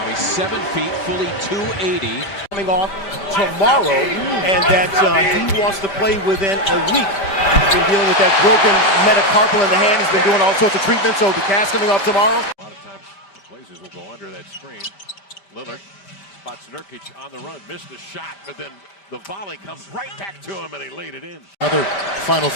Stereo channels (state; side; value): late; right; 5.1 ms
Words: He's 7 feet, fully 280. Coming off tomorrow, and that he wants to play within a week. He's been dealing with that broken metacarpal in the hand. He's been doing all sorts of treatments, so the cast coming off tomorrow. A lot of times the Blazers will go under that screen. Lillard spots Nurkic on the run, missed the shot, but then the volley comes right back to him, and he laid it in. Another Final